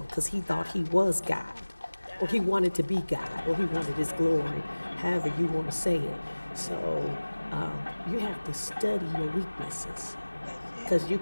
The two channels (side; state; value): both; inverted; correlation -1.00